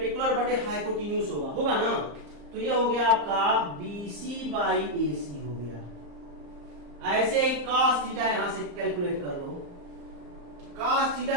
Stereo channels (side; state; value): left; late; 34 ms